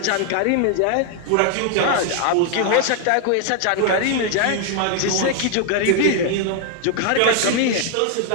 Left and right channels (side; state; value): both; different; correlation 0.00